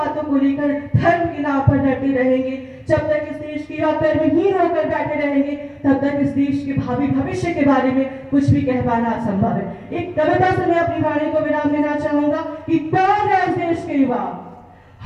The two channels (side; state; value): both; identical; correlation 1.00